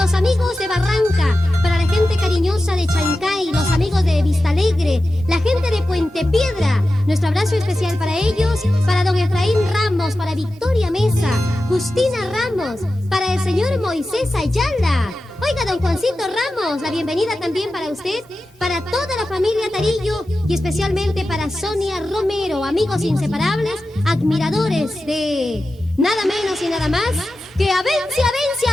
amigos de Barranca, para la gente cariñosa de Chancay, los amigos de Vista Alegre, la gente de Puente Piedra. Nuestro abrazo especial para ellos, para don Efraín Ramos, para Victoria Mesa, Justina Ramos, para el señor Moisés Ayala. Oiga, don Juancito Ramos, la bienvenida también para usted, para toda la familia Tarillo y especialmente para Sonia Romero, amigos inseparables, admiradores de nada menos y nada más que Avencia, Avencia,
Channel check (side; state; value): both; normal; correlation 0.93